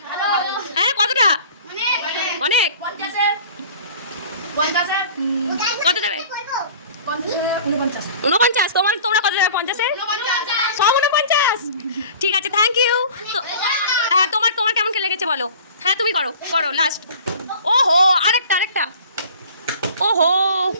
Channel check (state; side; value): inverted; both; correlation -0.44